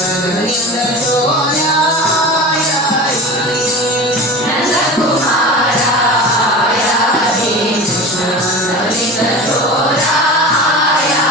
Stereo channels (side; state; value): both; normal; correlation 0.31